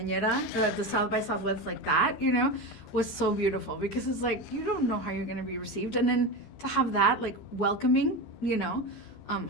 the South by Southwest like that, was so beautiful, because it's like, you don't know how you're gonna be received. And then to have that like welcoming,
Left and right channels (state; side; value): late; right; 13 ms